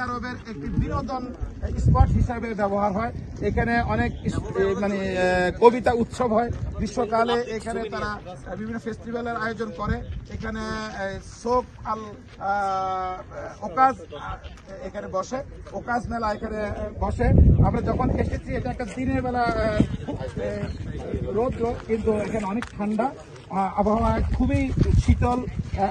আরবের একটি বিনোদন স্পট হিসাবে ব্যবহার হয়। এখানে অনেক কবিতা উৎসব হয় গ্রীষ্মকালে। এখানে তারা বিভিন্ন ফেস্টিভ্যালের আয়োজন করে। এখানে শোক আল ওকাজ এখানে বসে, ওকাজ মেলা এখানে বসে। আমরা যখন এসেছি, এটা একটা দিনের বেলা রোদ, কিন্তু এখানে অনেক ঠান্ডা আবহাওয়া, খুবই শীতল,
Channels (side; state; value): both; identical; correlation 1.00